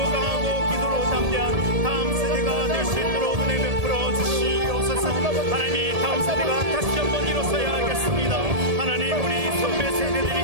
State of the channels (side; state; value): left; late; 1.7 ms